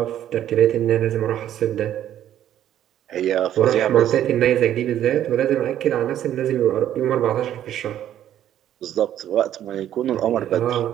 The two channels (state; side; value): quieter; left; 11.3 dB